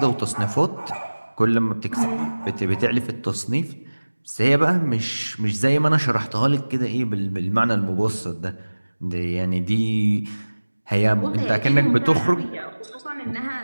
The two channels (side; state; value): both; inverted; correlation -1.00